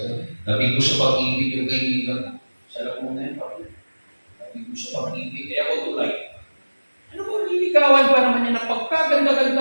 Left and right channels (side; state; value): both; inverted; correlation -1.00